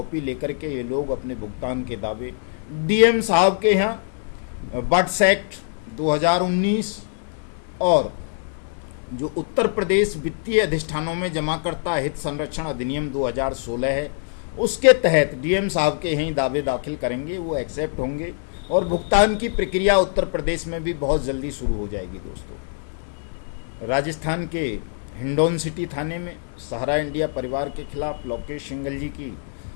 लेकर के ये लोग अपने भुगतान के दावे डीएम साहब के यहाँ बट्स एक्ट 2019 और जो उत्तर प्रदेश वित्तीय अधिष्ठानों में जमाकर्ता हित संरक्षण अधिनियम 2016 है, उसके तहत डीएम साहब के यहीं दावे दाखिल करेंगे, वो एक्सेप्ट होंगे और भुगतान की प्रक्रिया उत्तर प्रदेश में भी बहुत जल्दी शुरू हो जाएगी। दोस्तों, राजस्थान के हिंडौन सिटी थाने में सहारा इंडिया परिवार के खिलाफ लोकेश सिंघल जी की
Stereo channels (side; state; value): right; silent; digital silence